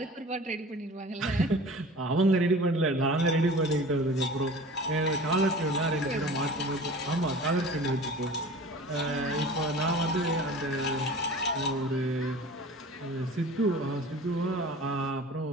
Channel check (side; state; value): both; normal; correlation 0.40